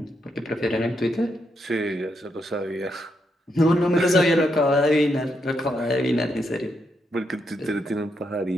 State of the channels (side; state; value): both; normal; correlation 0.80